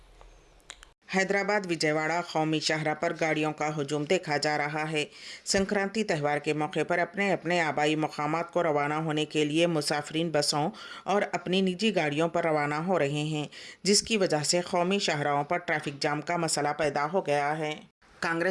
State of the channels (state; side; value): identical; both; correlation 1.00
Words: हैदराबाद विजयवाड़ा कौमी शाहरा पर गाड़ियों का हुजूम देखा जा रहा है। संक्रांति त्यौहार के मौके पर अपने अपने आबाई मकामात को रवाना होने के लिए मुसाफिरीन बसों और अपनी निजी गाड़ियों पर रवाना हो रहे हैं, जिसकी वजह से कौमी शाहराओं पर ट्रैफिक जाम का मसला पैदा हो गया है।